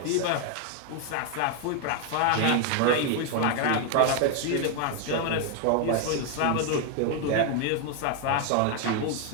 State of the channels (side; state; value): both; different; correlation 0.01